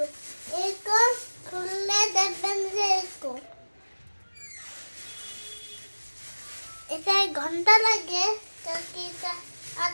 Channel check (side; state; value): both; inverted; correlation -1.00